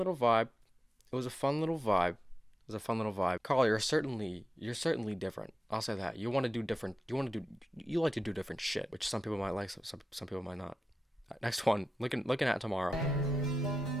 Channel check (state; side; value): normal; both; correlation 0.91